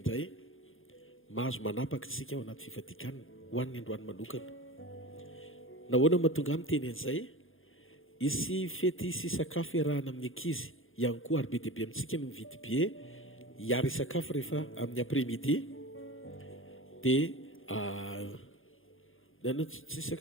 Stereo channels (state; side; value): late; right; 0.59 ms